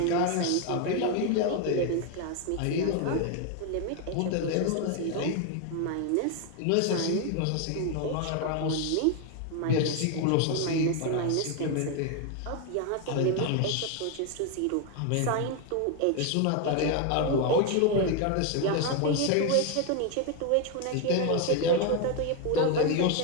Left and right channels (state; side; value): different; both; correlation 0.01